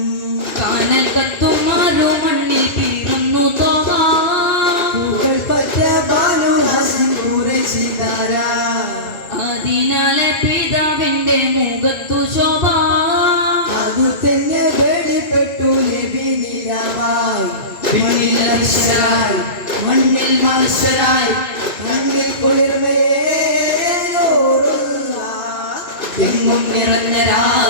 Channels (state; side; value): late; right; 2.3 ms